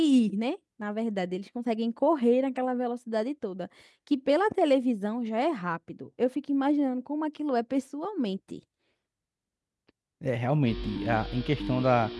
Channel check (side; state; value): both; identical; correlation 1.00